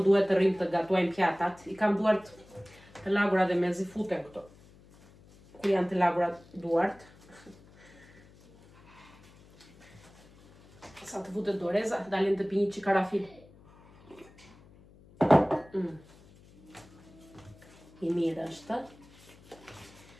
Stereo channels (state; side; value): noise; left; hum, 25 dB below the sound